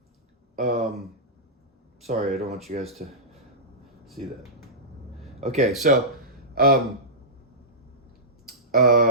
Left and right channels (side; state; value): both; normal; correlation -0.16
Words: sorry, I don't want you guys to see that. Okay, so